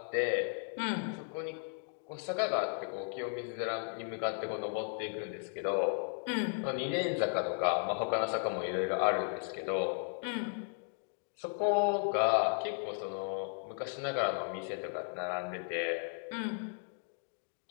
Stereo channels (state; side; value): silent; right; 54 dB below the other